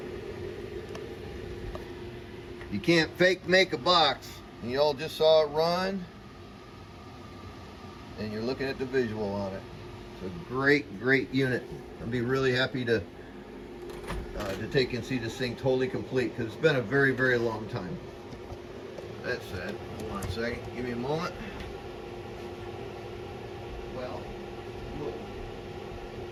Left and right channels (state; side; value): identical; both; correlation 1.00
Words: You can't fake make a box, and you all just saw it run, and you're looking at the visual on it. It's a great unit. I'd be really happy to take and see this thing totally complete, because it's been a very long time. That said, hold on a second, give me a moment. Well, look.